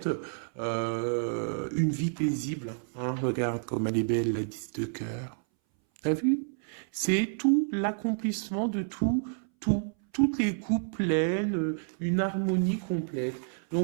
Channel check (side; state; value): left; silent; 58 dB below the other